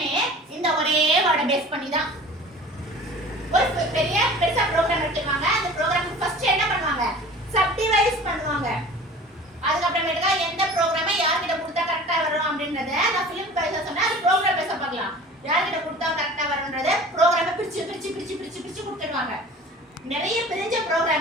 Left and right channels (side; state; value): both; normal; correlation 0.42